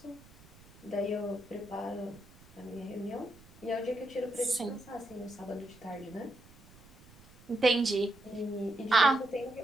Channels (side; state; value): right; noise; rumble, 24 dB below the sound